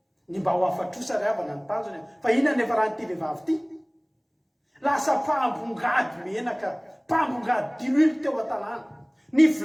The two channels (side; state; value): both; identical; correlation 1.00